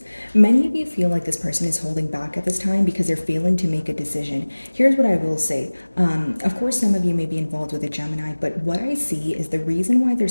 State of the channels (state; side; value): inverted; both; correlation -1.00